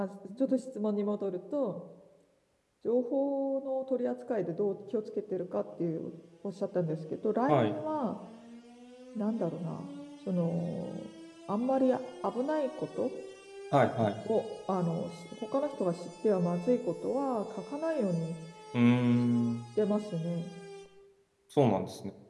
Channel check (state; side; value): identical; both; correlation 1.00